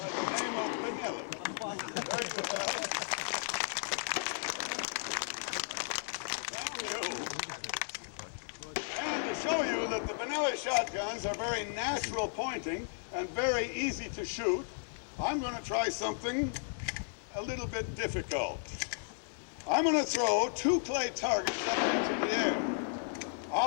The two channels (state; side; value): silent; right; digital silence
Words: the name of Benelli. There you have it. Thank you. And to show you that the Benelli shotguns are very natural pointing and very easy to shoot, I'm going to try something a little bit difficult. I'm going to throw two clay targets up into the air.